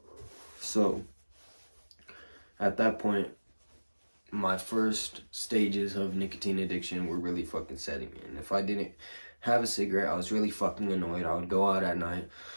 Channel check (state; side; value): inverted; both; correlation -1.00